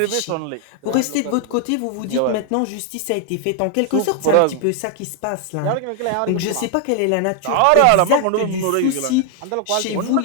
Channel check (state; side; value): different; both; correlation 0.00